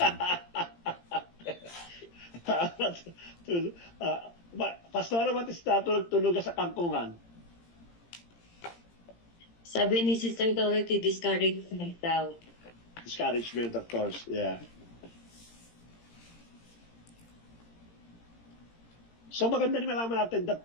Pastora, what is that? Tulog sa kangkungan? Sabi ni Sister Dorothy, discouragement daw. Discouragement, of course, yeah. So maganda rin malaman natin that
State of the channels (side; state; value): right; late; 17 ms